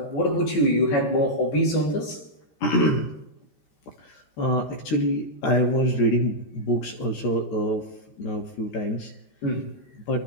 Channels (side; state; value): right; late; 13 ms